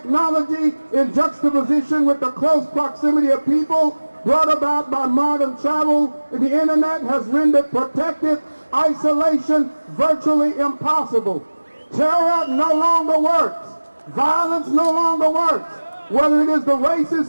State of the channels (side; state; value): both; inverted; correlation -1.00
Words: in juxtaposition with the close proximity of people brought about by modern travel and the internet has rendered protective isolation virtually impossible. Terror no longer works. Violence no longer works. Whether it is the racists